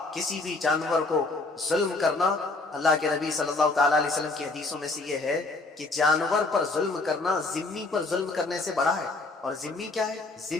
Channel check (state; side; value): quieter; right; 3.3 dB